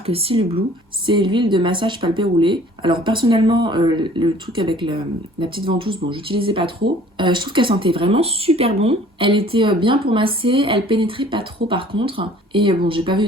Seal Blue. C'est l'huile de massage palpé roulé. Alors personnellement, le truc avec la petite ventouse, bon, j'utilisais pas trop. Je trouve qu'elle sentait vraiment super bon. Elle était bien pour masser, elle pénétrait pas trop par contre. Et bon, j'ai pas vu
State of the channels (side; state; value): both; normal; correlation 0.52